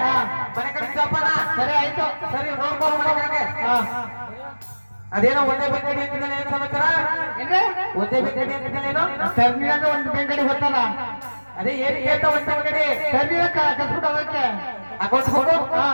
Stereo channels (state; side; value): inverted; both; correlation -1.00